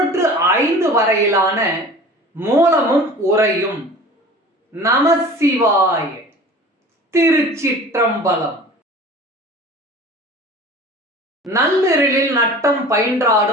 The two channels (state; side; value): normal; both; correlation 0.41